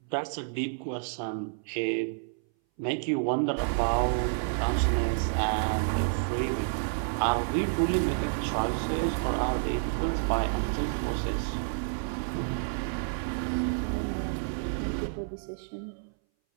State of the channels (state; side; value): silent; left; 58 dB below the other